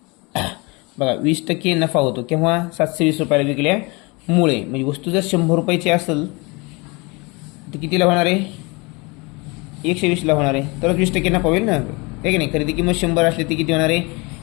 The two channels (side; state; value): right; quieter; 27.4 dB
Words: बघा 20% नफा होतो केव्हा? 720 रुपयाला विकल्यामुळे. म्हणजे वस्तू जर 100 रुपयाची असेल तर कितीला होणार आहे? 120ला होणार आहे. तरच 20% नफा होईल ना, आहे की नाही? खरेदी किंमत 100 असली तर किती होणार आहे?